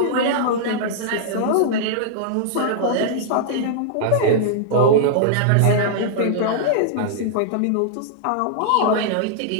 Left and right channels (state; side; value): different; both; correlation -0.02